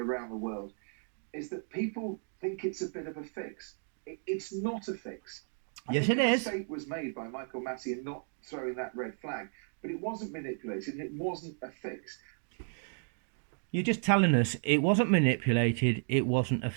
the world, is that people think it's a bit of a fix. It's not a fix. Yes, it is. A mistake was made by Michael Massey in not throwing that red flag, but it wasn't manipulated and it wasn't a fix. You're just telling us it wasn't manipulated, it wasn't a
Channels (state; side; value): silent; left; 55 dB below the other